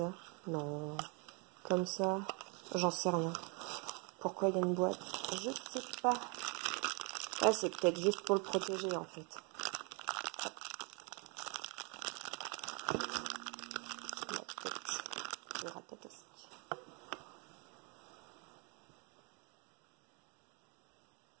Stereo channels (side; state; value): left; quieter; 33.8 dB